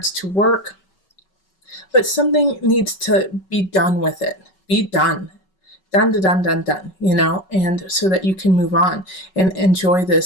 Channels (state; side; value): late; right; 5.3 ms